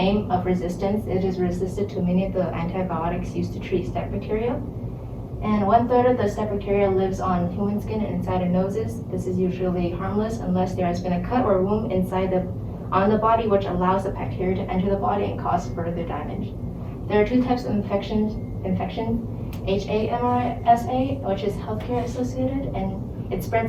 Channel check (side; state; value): both; identical; correlation 1.00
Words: of resistance. It is resistant to many of the antibiotics used to treat staph bacteria. And 1/3 of the staph bacteria lives on human skin and inside of noses. This is usually harmless unless there has been a cut or wound on the body, which allows the bacteria to enter the body and cause further damage. There are two types of infection: HAMRSA, which is healthcare associated, and it